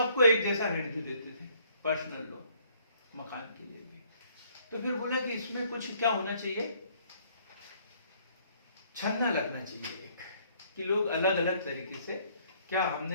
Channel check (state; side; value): inverted; both; correlation -0.63